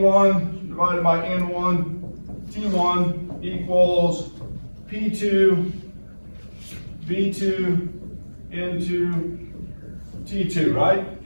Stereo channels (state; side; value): inverted; both; correlation -1.00